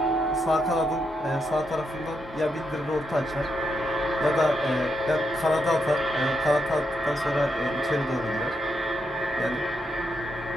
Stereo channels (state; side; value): normal; both; correlation 0.82